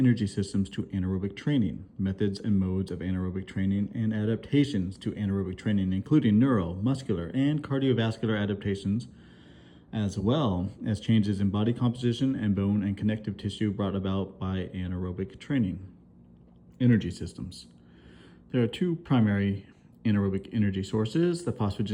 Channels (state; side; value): identical; both; correlation 1.00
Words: systems to anaerobic training, methods and modes of anaerobic training, and adaptations to anaerobic training, including neuro, muscular, and cardiovascular adaptations, as well as changes in body composition and bone and connective tissue brought about by anaerobic training. Energy systems. There are two primary anaerobic energy sources, the